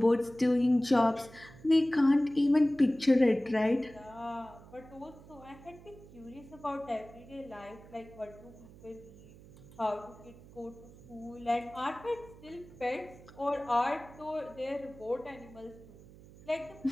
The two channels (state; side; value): noise; right; hum, 20 dB below the sound